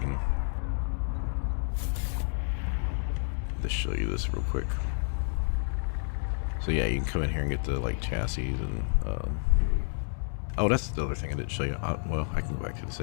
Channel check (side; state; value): right; silent; 58 dB below the other